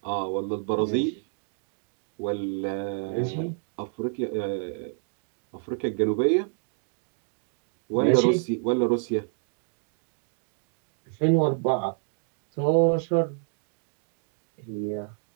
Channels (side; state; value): left; silent; 59 dB below the other